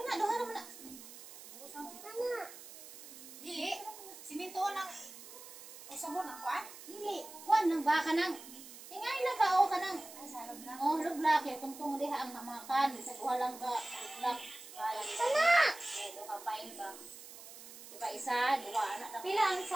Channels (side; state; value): right; noise; hiss, 15 dB below the sound